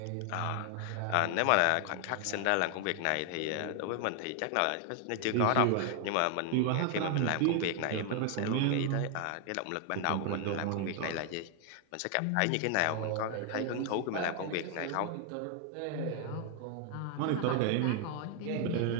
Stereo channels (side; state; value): both; different; correlation 0.00